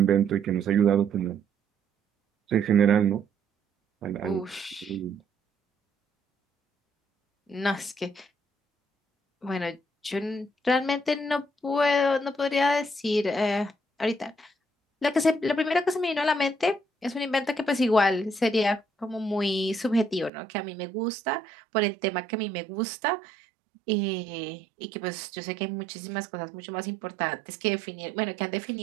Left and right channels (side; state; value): left; drops out; at 20.3 s